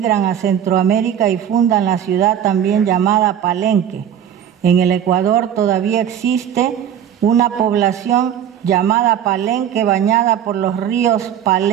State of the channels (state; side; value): quieter; left; 9.5 dB